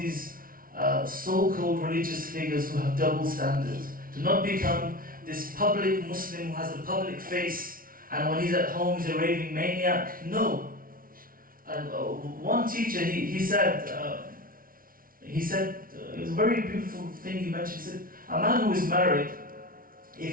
so-called religious figures who have double standards. Do not become this public Muslim who has a public face, and when he's at home he's a raving maniac. No. And one teacher, he said, it was a very beautiful thing he mentioned. He said, a man who is married, if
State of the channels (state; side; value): late; left; 0.42 ms